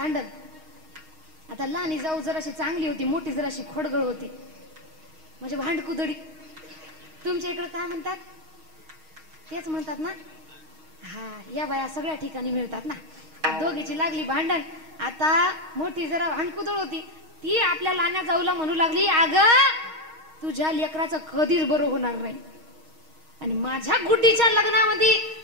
आता लहानी जाऊ जराशी चांगली होती, मोठी जराशी खोडगळ होती, म्हणजे भांडकुदडी. तुमच्या इकडे काय म्हणतात, तेच म्हणतात ना. हा, या बाया सगळ्या ठिकाणी मिळतात ना. दोघीची लागली भांडण. आता मोठी जरा भांडकुदळ होती, ती आपल्या लहान्या जाऊला म्हणू लागली, अगं तुझ्या लेकराचं कधीच बरं होणार नाही, आणि माझ्या गुड्डीच्या लग्नामध्ये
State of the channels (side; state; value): left; late; 6.4 ms